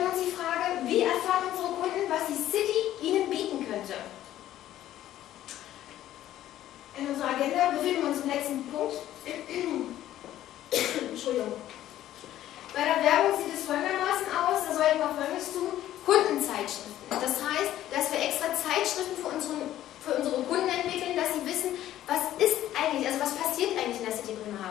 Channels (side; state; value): right; quieter; 13.0 dB